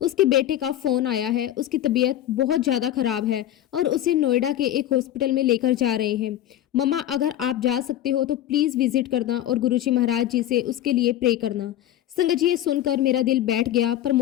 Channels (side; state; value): right; quieter; 12.4 dB